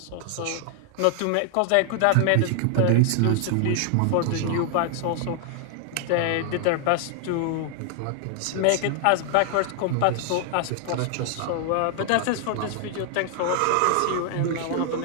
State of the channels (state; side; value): different; both; correlation 0.00